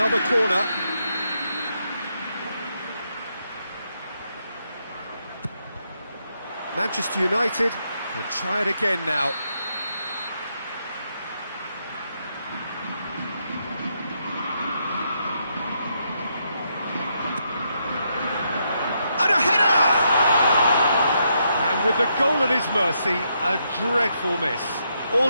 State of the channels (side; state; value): both; inverted; correlation -0.79